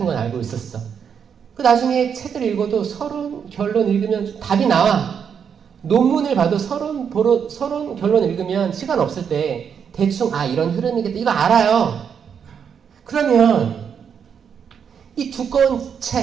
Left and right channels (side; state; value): left; quieter; 7.3 dB